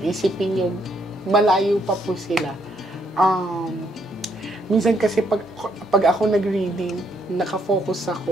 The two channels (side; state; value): both; normal; correlation 0.72